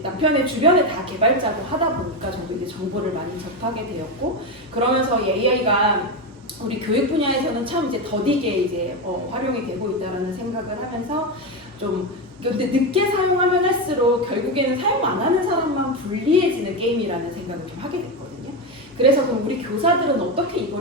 남편의 주변에 다 개발자고 하다 보니까 저도 이제 정보를 많이 접하게 되었고, 그러면서 이 AI가 우리 교육 분야에서는 참 이제 더디게 이제 활용이 되고 있다라는 생각을 하면서 좀 근데 늦게 사용하면 할수록 결국에는 사용 안 하는 사람만 불리해지는 게임이라는 생각을 좀 하게 됐거든요. 그래서 그럼 우리 교사들은 어떻게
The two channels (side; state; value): both; normal; correlation 0.13